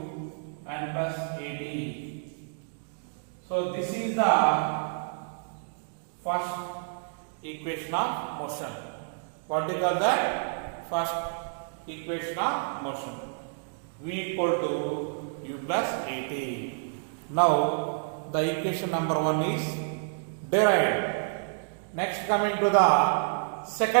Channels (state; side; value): silent; left; digital silence